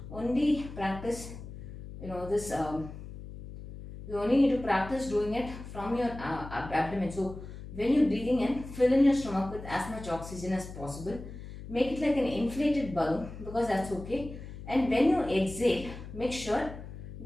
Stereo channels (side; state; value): left; noise; hum, 12 dB below the sound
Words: only practice, this, you only need to practice doing it from your abdomen. So when you're breathing in, fill in your stomach with as much oxygen as possible. Make it like an inflated balloon because that's okay. And when you exhale, make sure